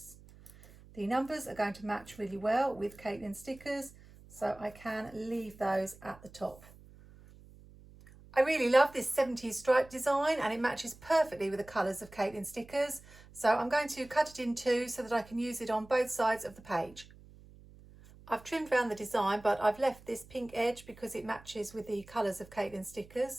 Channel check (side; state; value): right; noise; hum, 22 dB below the sound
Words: The numbers are going to match really well with Katelyn stickers, so I can leave those at the top. I really love this 70s stripe design and it matches perfectly with the colours of Katelyn stickers, so I'm going to cut it in two so that I can use it on both sides of the page. I've trimmed around the design, but I've left this pink edge because it matches with the colours of Katelyn